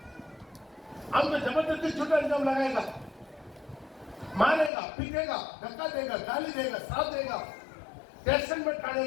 हमको जबरदस्ती झूठा इल्जाम लगाएगा, मारेगा, पीटेगा, धक्का देगा, गाली देगा, श्राप देगा, टेंशन में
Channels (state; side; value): drops out; right; at 4.7 s